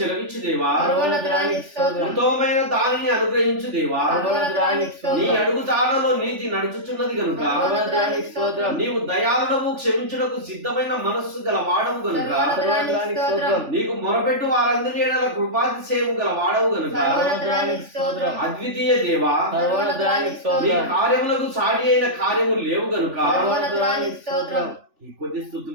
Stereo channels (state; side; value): late; left; 3.4 ms